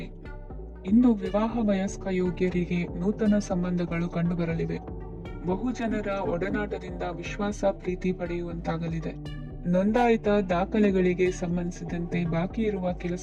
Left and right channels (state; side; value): identical; both; correlation 1.00